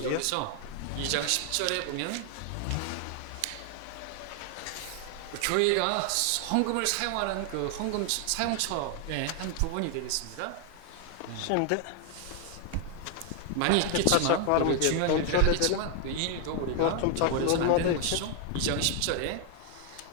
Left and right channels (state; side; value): different; both; correlation 0.00